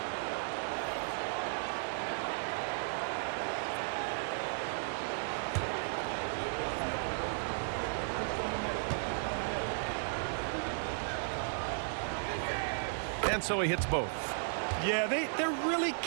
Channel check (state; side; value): silent; left; digital silence